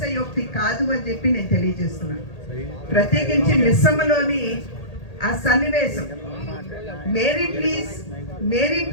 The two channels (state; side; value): late; right; 1.8 ms